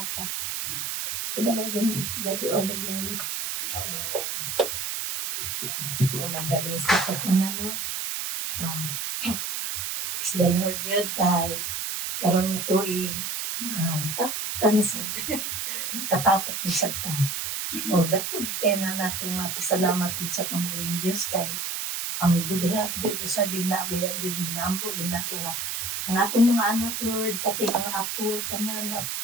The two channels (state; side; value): noise; right; hiss, 3 dB below the sound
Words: So, dalay kong God be all the glory. Magkabisa sa tanan, no? Praise the Lord yun, kay karon nga tuig, tanasad, katapok mo sa ta. O, dakod kaya na nato nga pasalamat din sa pambuhing Diyos kay ang good health yun sa ginagaya yun ginampo, ginako nga. Ang akong mga anak, Lord, pati mga apo, tanan,